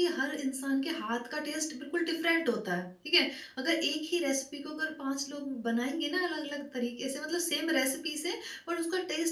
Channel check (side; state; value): both; identical; correlation 1.00